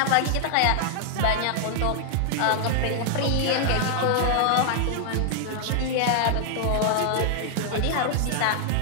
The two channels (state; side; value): different; both; correlation -0.01